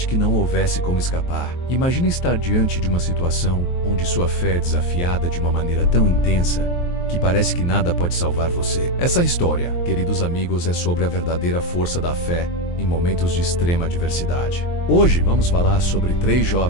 que não houvesse como escapar? Imagine estar diante de uma situação onde sua fé é desafiada de uma maneira tão intensa que parece que nada pode salvar você. Essa história, queridos amigos, é sobre a verdadeira força da fé em momentos de extrema adversidade. Hoje vamos falar sobre 3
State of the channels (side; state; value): right; late; 23 ms